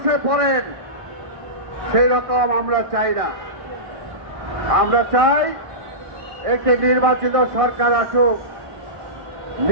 পড়েন, সেই রকম আমরা চাই না। আমরা চাই একটি নির্বাচিত সরকার আসুক।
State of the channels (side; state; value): left; late; 1.6 ms